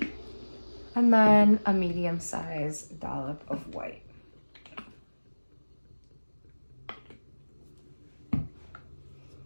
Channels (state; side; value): inverted; both; correlation -1.00